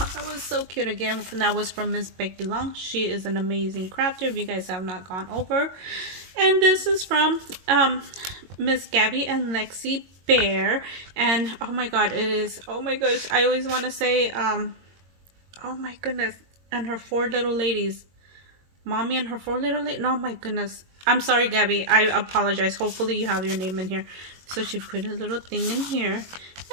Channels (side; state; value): left; late; 22 ms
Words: that was so cute. Again, that was from Miss Becky Long. She is an amazing crafter if you guys have not gone over. And this is from Miss Gabby and Lexi Bear, and oh my god, it is, oh my gosh, I always want to say oh my goodness, and her four little ladies, mommy and her four little ladies. No, my goodness, I'm sorry Gabby, I apologize. Hopefully you have your name in here. So she put a little thing in here, and